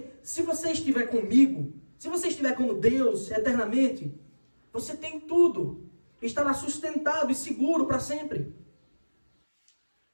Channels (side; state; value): both; inverted; correlation -1.00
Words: se você estiver comigo, se você estiver com Deus eternamente, você tem tudo. Estará sustentado e seguro para sempre.